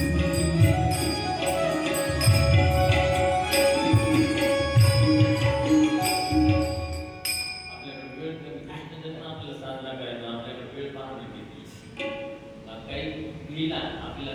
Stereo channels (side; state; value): both; identical; correlation 1.00